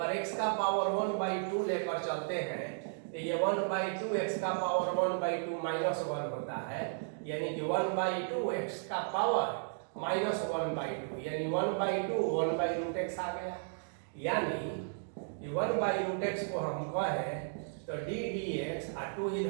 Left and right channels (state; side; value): silent; left; digital silence